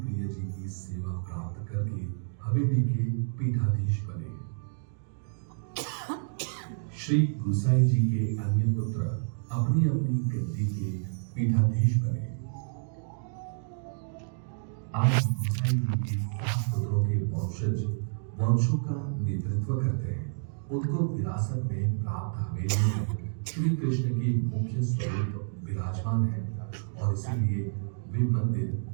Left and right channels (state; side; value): silent; left; digital silence